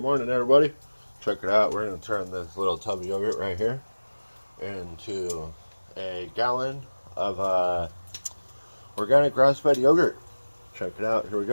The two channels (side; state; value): both; inverted; correlation -1.00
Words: morning, everybody. Check it out. We're going to turn this little tub of yogurt right here into a gallon of organic grass-fed yogurt. Check it out. Here we